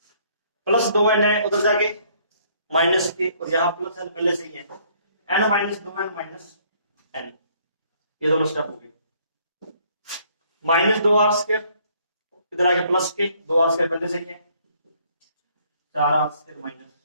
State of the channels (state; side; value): inverted; both; correlation -0.63